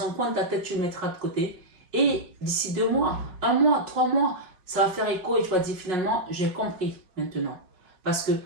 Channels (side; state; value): left; late; 5.4 ms